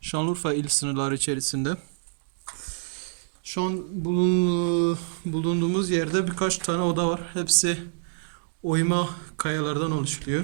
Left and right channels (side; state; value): left; silent; digital silence